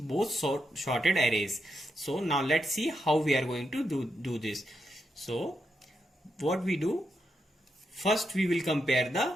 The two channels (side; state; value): both; normal; correlation 0.84